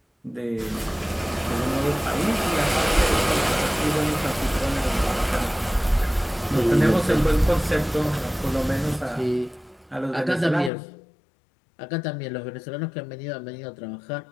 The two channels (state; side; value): drops out; right; at 10.7 s